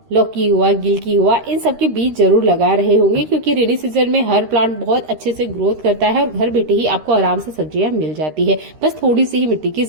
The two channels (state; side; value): late; left; 13 ms